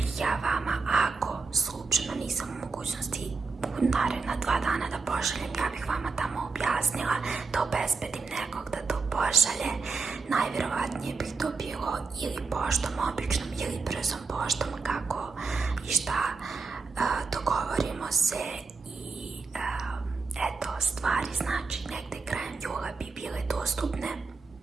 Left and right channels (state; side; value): quieter; left; 4.4 dB